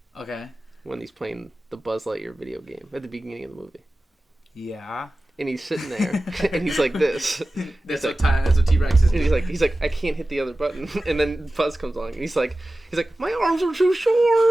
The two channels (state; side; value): normal; both; correlation 0.96